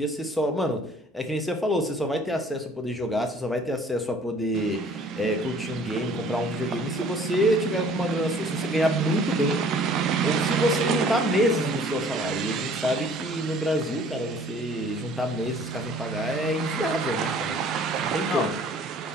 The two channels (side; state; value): both; normal; correlation 0.53